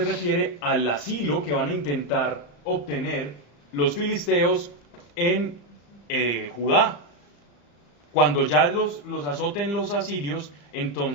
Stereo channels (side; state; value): right; late; 35 ms